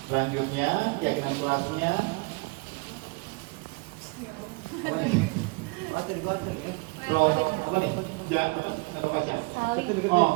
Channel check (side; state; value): left; quieter; 27.9 dB